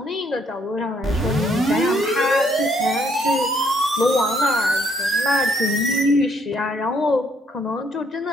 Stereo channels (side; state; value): both; normal; correlation 0.69